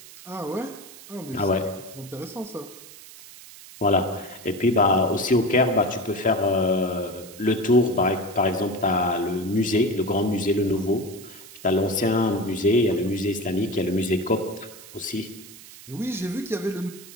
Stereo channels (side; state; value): right; noise; hiss, 18 dB below the sound